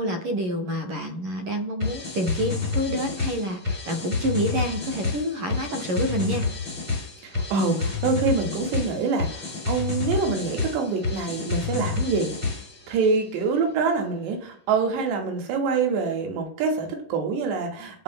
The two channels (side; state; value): left; late; 11 ms